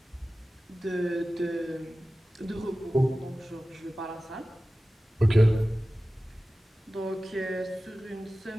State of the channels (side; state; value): both; normal; correlation 0.96